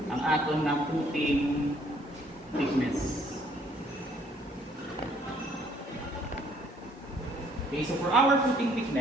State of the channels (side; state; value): both; normal; correlation 0.63